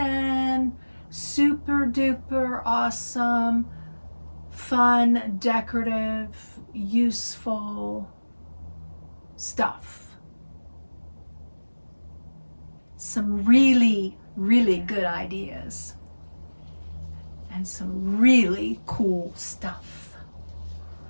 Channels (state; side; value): inverted; both; correlation -1.00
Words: super duper awesome, fun, decorative, useful stuff. Some really, really good ideas. And some really cool stuff.